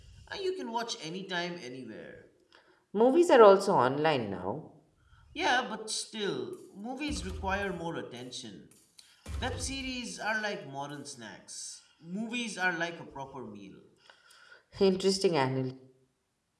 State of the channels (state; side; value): identical; both; correlation 1.00